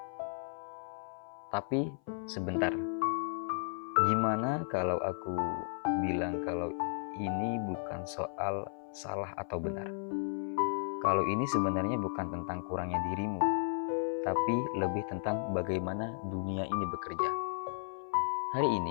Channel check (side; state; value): right; silent; 55 dB below the other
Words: Tapi sebentar, gimana kalau aku bilang kalau ini bukan soal salah atau benar? Kalau ini sebenarnya bukan tentang kurangnya dirimu, tapi lebih tentang bagaimana dunia ini bekerja. Hari